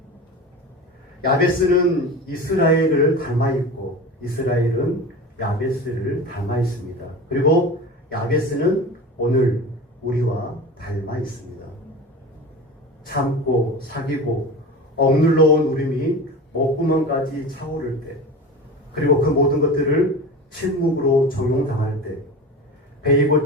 야베스는 이스라엘을 닮아 있고 이스라엘은 야베스를 닮아 있습니다. 그리고 야베스는 오늘 우리와 닮아 있습니다. 참고 사귀고 억눌러 온 울음이 목구멍까지 차오를 때, 그리고 그 모든 것들을 침묵으로 적용당할 때, 베이고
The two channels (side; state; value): both; normal; correlation 0.31